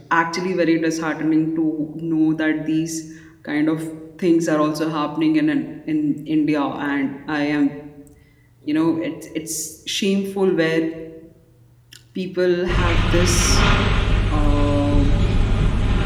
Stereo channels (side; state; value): both; identical; correlation 1.00